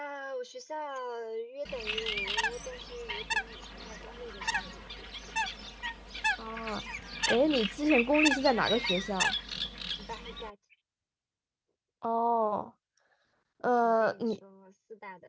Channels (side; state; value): both; identical; correlation 1.00